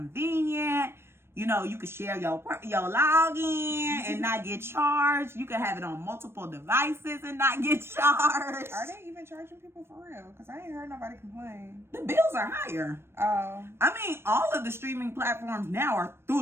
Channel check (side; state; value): left; late; 0.12 ms